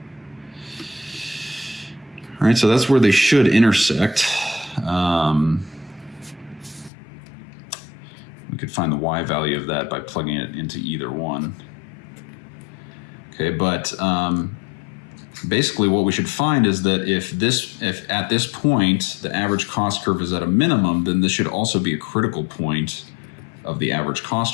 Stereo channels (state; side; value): drops out; right; at 6.9 s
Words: All right, so that's where they should intersect. We could find the y value of that by plugging it into either one. Okay, but basically what we should find is that if at this point the average cost curve is at a minimum, then this should also be a critical point of the average